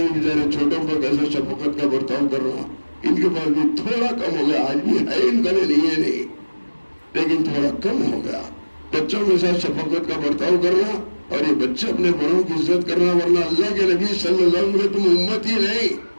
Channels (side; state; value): both; inverted; correlation -1.00